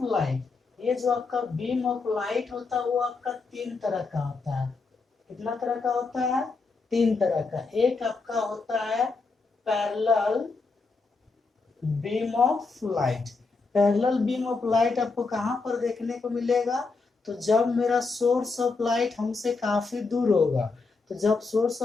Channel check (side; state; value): right; quieter; 4.1 dB